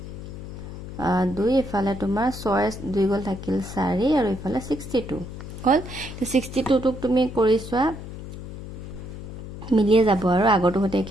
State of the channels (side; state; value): left; noise; hum, 10 dB below the sound